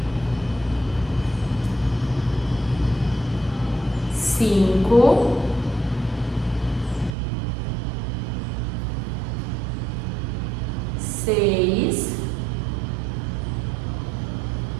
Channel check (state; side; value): drops out; left; at 7.2 s